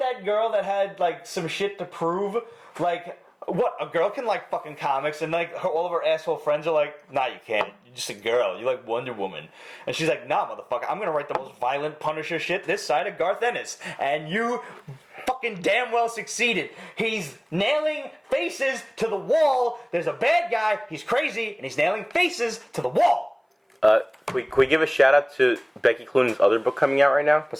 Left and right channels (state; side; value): identical; both; correlation 1.00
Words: girl that had like some shit to prove, like what, a girl can like fucking comics, and like all of her asshole friends are like, nah, you can't. You're just a girl. You like Wonder Woman. And she's like, nah, motherfucker, I'm gonna write the most violent Punisher shit this side of Garth Ennis. And you fucking damn well succeeded. He's nailing faces to the wall. There's a bad guy, he's crazy, and he's nailing faces to the wall. Can we give a shout out to Becky Cloonan's other book coming out right now? What's